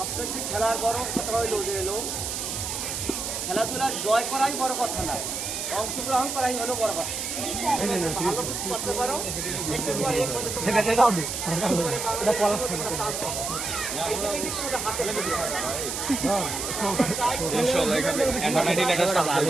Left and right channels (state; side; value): noise; right; hiss, 4 dB below the sound